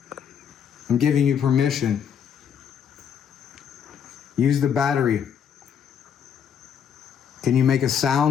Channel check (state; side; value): quieter; right; 8.1 dB